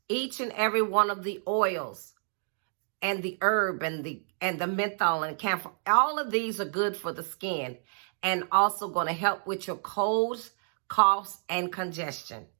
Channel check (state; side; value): silent; left; digital silence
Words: each and every one of the oils and the herb and the menthol and camphor. All of these are good for the skin and also going to help with your colds, coughs, and congestion.